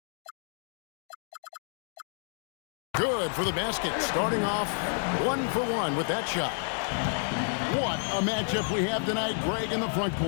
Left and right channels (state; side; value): silent; right; digital silence